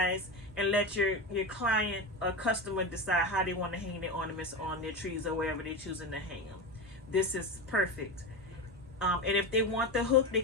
and let your client or customer decide how they want to hang their ornaments on their trees or wherever they're choosing to hang them. This is perfect. And if they want the hook, they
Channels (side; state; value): both; normal; correlation 0.21